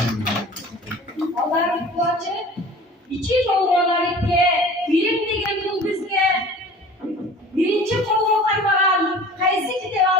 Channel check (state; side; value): normal; both; correlation 0.42